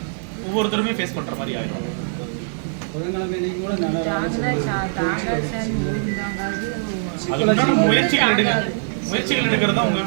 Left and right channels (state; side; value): silent; left; 58 dB below the other